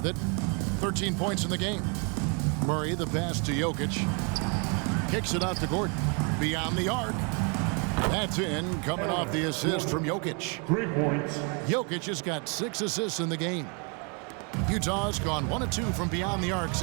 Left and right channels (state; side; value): quieter; left; 35.0 dB